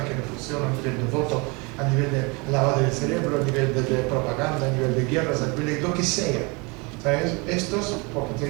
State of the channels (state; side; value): quieter; left; 28.9 dB